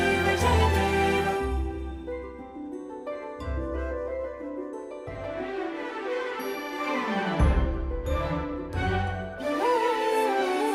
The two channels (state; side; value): identical; both; correlation 1.00